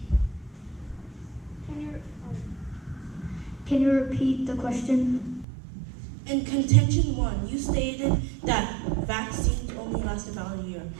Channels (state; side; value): drops out; left; at 5.5 s